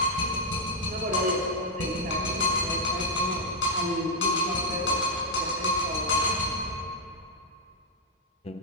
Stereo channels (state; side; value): normal; both; correlation -0.02